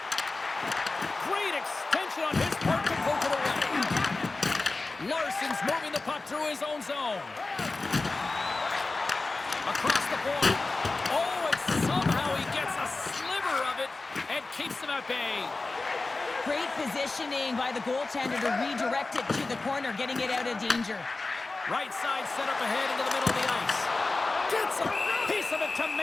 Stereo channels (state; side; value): quieter; right; 3.5 dB